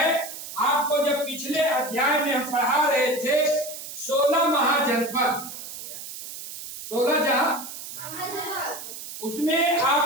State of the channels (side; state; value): right; noise; hiss, 10 dB below the sound